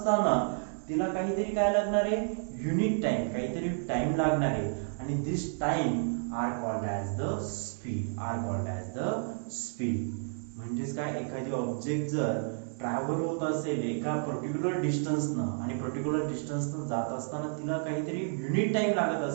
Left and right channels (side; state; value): left; silent; digital silence